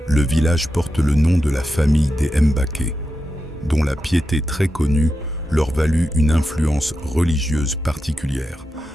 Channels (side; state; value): both; normal; correlation 0.89